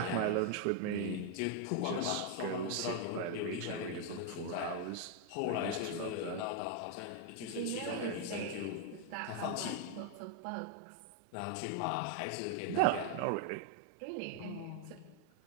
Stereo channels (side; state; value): both; different; correlation 0.00